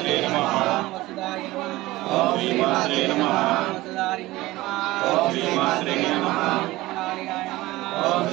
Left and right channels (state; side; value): quieter; left; 18.6 dB